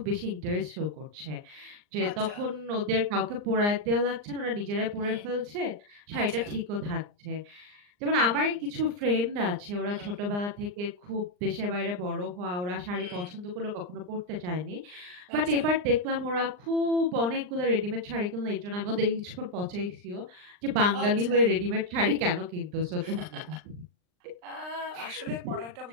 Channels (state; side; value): late; left; 39 ms